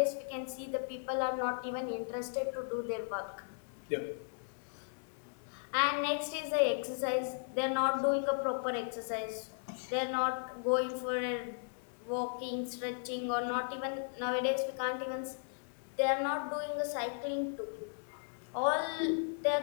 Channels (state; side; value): silent; right; digital silence